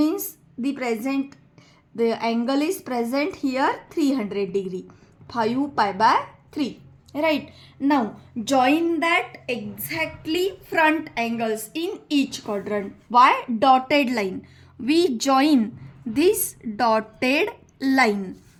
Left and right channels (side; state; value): both; identical; correlation 1.00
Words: the angle is present here 300 degree. 5 pi by 3. Right. Now join that exactly front angles in each quadrant. Why? Dotted line. We join this dotted line.